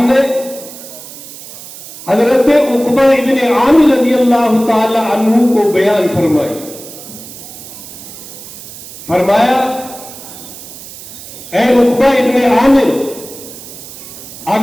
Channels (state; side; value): noise; right; hiss, 15 dB below the sound